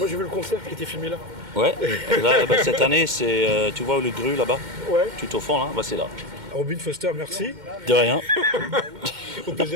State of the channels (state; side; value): late; left; 2.1 ms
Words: j'ai vu le concert qui était filmé là. Ouais, là, cette année, c'est, tu vois le Gru là-bas? Ouais. Tout au fond là, c'est là. Robin Foster, merci. De rien. Au